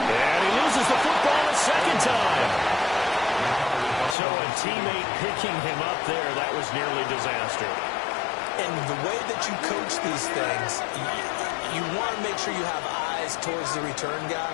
And he loses the football a second time. So a teammate picking him up there, that was nearly disaster. And the way that you coach these things, you want to make sure you have eyes towards the return guy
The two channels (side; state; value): right; drops out; at 4.2 s